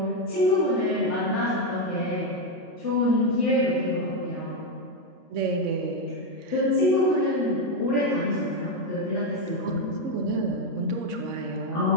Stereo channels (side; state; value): both; normal; correlation 0.05